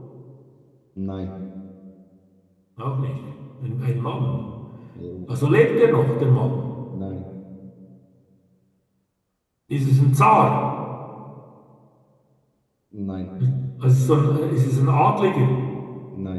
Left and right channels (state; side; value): identical; both; correlation 1.00